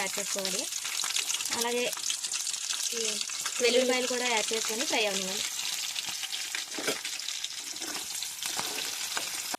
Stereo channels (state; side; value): identical; both; correlation 1.00